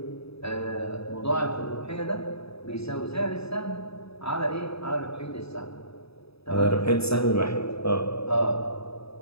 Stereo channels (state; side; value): late; right; 0.78 ms